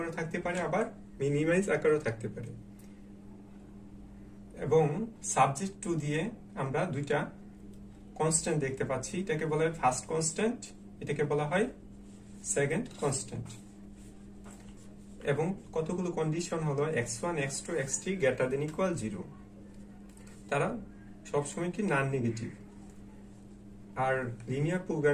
থাকতে পারে, আবার মিনিমাইজ আকারেও থাকতে পারে। এবং সাবজেক্ট টু দিয়ে আমরা দুইটা কনস্ট্যান্ট দেখতে পাচ্ছি। এটাকে বলা হয় ফার্স্ট কনস্ট্যান্ট, এটাকে বলা হয় সেকেন্ড কনস্ট্যান্ট। এবং কতগুলো কন্ডিশন হলো x1 x2 x3 greater than equal 0। তারা সবসময় কি নন নেগেটিভ। আর লিনিয়ার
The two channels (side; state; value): both; identical; correlation 1.00